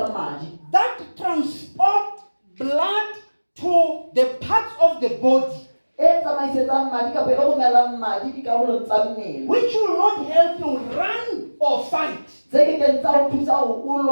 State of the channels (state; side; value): inverted; both; correlation -1.00